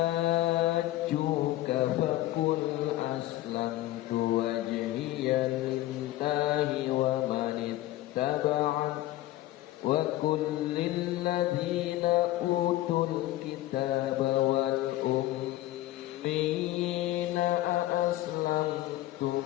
faqul aslamtu wajhiya lillahi wa man ittaba'ani wa kullil ladzina utul kitaba wal ummiyina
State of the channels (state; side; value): quieter; right; 15.7 dB